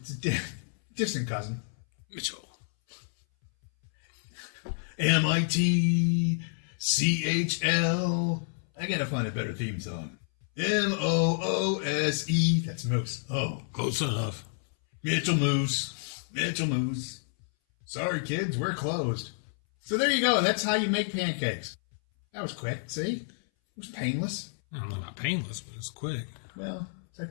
a distant cousin. Mitchell. MITCHL. I gotta find a better theme song. MOOSE. That's Moose. Oh, close enough. Mitchell Moose. Mitchell Moose. Sorry, kids, we're closed. So there you go. That's how you make pancakes. That was quick, see? It was painless. I don't know about painless, but it's quick. Well, it's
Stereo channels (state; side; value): silent; right; 58 dB below the other